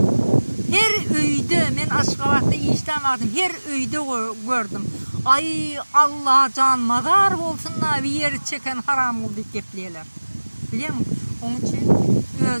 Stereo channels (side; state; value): both; inverted; correlation -1.00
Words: Her öyde, men Aşgabat'ta işten vardım, her öyde gördüm. Ay Allah can madar olsunlar, bir yeri çeken haram oldu gepleyeler. Biliyor musun? Onun için